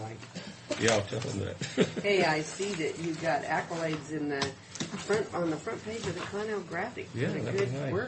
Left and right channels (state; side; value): identical; both; correlation 1.00